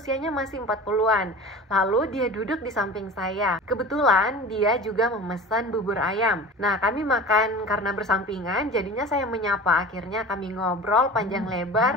masih 40-an. Lalu dia duduk di samping saya. Kebetulan dia juga memesan bubur ayam. Nah, kami makan karena bersampingan, jadinya saya menyapa. Akhirnya kami ngobrol panjang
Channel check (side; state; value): both; normal; correlation 0.36